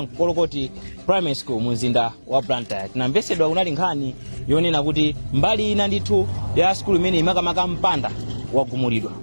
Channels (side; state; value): both; inverted; correlation -1.00